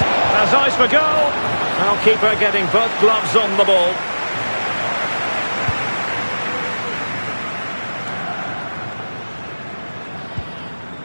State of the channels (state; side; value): inverted; both; correlation -1.00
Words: Has eyes for goal. Now keeper getting both gloves on the ball.